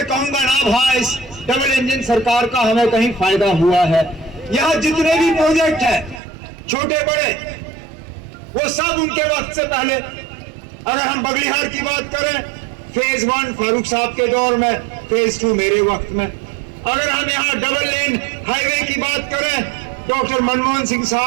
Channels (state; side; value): drops out; left; at 6.2 s